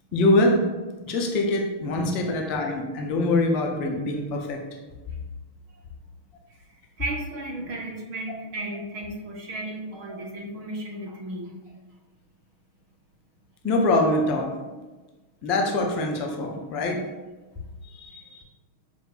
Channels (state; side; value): late; left; 6.3 ms